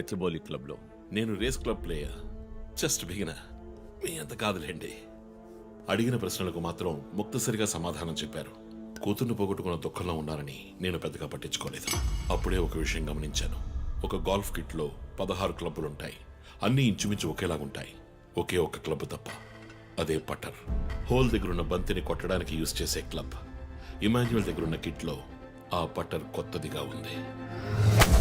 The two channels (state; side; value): identical; both; correlation 1.00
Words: క్లబ్లో. నేను race club player. Just beginner. మీ అంత కాదులేండి. అడిగిన ప్రశ్నలకు మాత్రం ముక్తసరిగా సమాధానం చెప్పారు. కూతుర్ని పోగొట్టుకున్న దుఃఖంలో ఉన్నారని నేను పెద్దగా పట్టించుకోలేదు. అప్పుడే ఒక విషయం గమనించాను. ఒక గోల్ఫ్ కిట్లో 16 క్లబ్బులుంటాయి. అన్నీ ఇంచుమించు ఒకేలాగుంటాయి. ఒకే ఒక్క క్లబ్ తప్ప, అదే పట్టర్. హోల్ దగ్గరున్న బంతిని కొట్టడానికి యూజ్ చేసే క్లబ్. ఇమాన్యుయల్ దగ్గరున్న కిట్లో ఆ పట్టర్ కొత్తదిగా ఉంది.